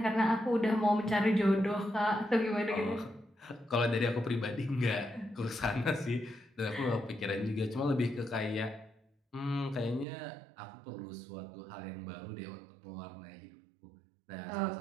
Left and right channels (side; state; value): left; drops out; at 10.1 s